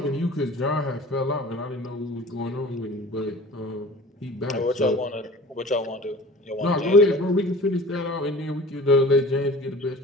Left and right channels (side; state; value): both; normal; correlation 0.42